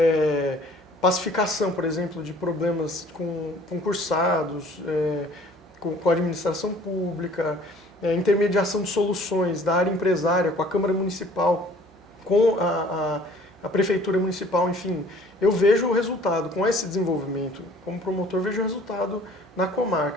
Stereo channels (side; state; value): right; noise; hum, 29 dB below the sound